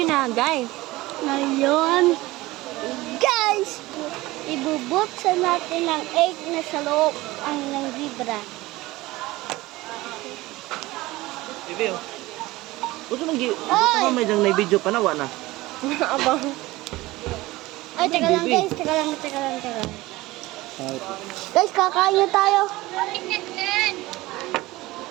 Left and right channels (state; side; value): quieter; left; 19.3 dB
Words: na, guys. Ngayon, guys, ibubuksan natin ang egg na sa loob ang ng zebra. Bibi, oh. Gusto mo may dang na-video pa na, na. Abang. Ay, teka lang guys, teka lang. Guys, kakain na tayo.